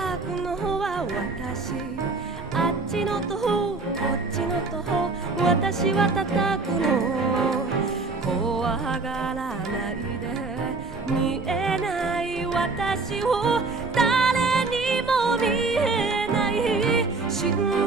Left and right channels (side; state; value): left; quieter; 3.8 dB